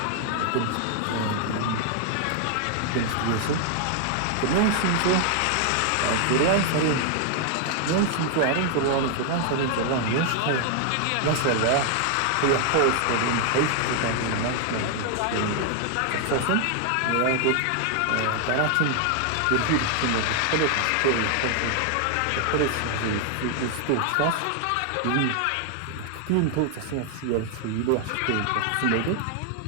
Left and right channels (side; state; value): both; different; correlation 0.00